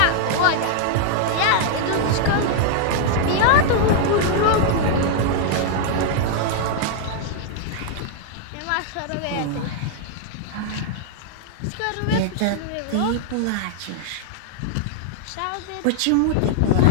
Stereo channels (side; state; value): both; different; correlation -0.01